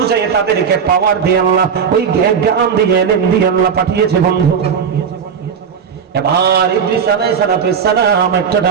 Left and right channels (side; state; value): left; quieter; 6.9 dB